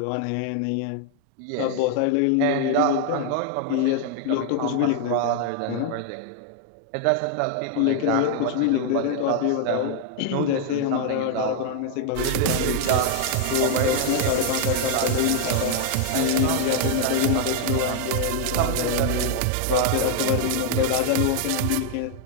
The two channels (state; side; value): different; both; correlation 0.00